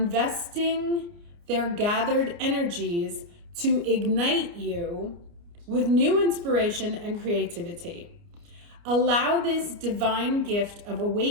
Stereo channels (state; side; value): late; left; 29 ms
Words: their gathered energies to ignite you with new inspiration and creativity. Allow this divine gift of